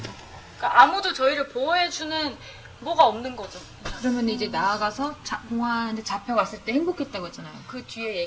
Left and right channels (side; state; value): both; identical; correlation 1.00